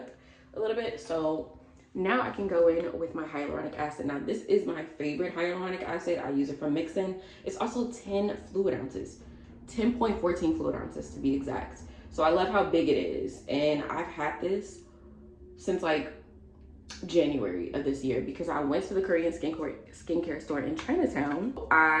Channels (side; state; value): both; identical; correlation 1.00